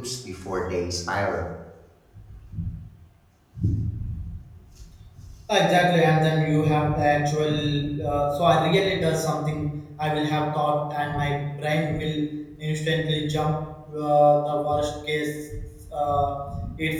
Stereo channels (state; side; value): identical; both; correlation 1.00